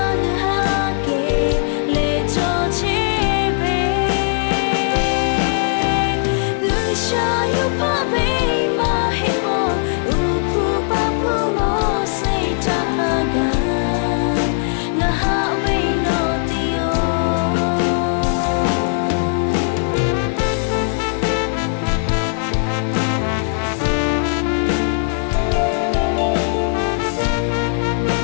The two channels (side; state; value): right; silent; digital silence